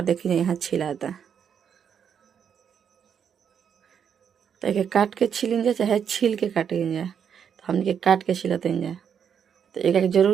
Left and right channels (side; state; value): left; quieter; 7.7 dB